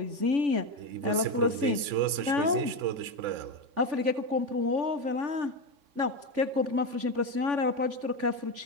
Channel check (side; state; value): left; late; 3.7 ms